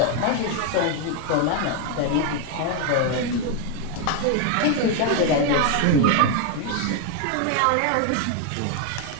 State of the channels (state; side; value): different; both; correlation 0.01